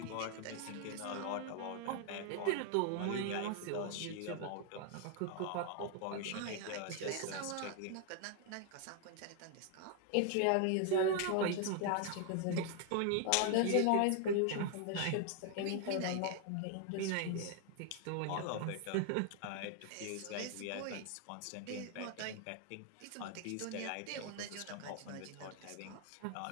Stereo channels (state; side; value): different; both; correlation 0.00